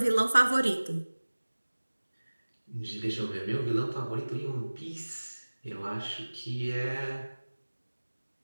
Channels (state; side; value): inverted; both; correlation -1.00